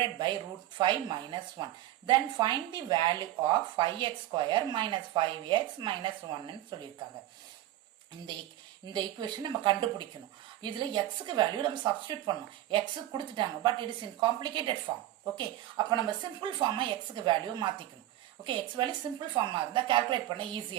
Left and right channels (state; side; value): quieter; left; 14.3 dB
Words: by root 5 minus 1 then find the value of 5x square minus 5x minus 1 சொல்லியிருக்காங்க. இந்த equation நம்ம கண்டுபிடிக்கணும். இதுல எக்ஸுக்கு வேல்யூ நம்ம சப்ஸ்டியூட் பண்ணணும். எக்ஸ் கொடுத்துட்டாங்க, but it is in complicated form. Okay, அப்ப நம்ம சிம்பிள் ஃபார்மா எக்ஸுக்கு வேல்யூ மாத்திக்கணும். ஓகே, எக்ஸ் வேல்யூ சிம்பிள் ஃபார்மா இருந்தா கால்குலேட் பண்ண